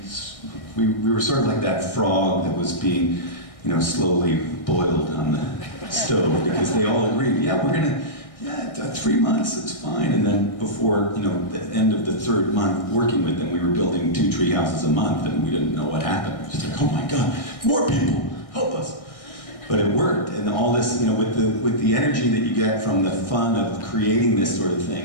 were sort of like that frog that was being, slowly boiled on the stove, because they all agreed, yeah, 3 months, it's fine. And then before, the end of the 3rd month working with them, we were building 2 tree houses a month, and we didn't know what happened. It was just like, oh my God, more people, help us. But it worked, and all this, with the energy that you get from the fun of creating this sort of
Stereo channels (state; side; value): late; right; 1.6 ms